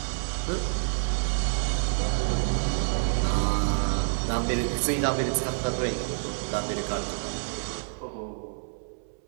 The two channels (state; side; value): silent; left; 59 dB below the other